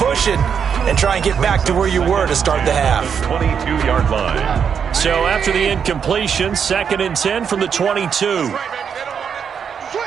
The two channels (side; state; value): left; quieter; 7.2 dB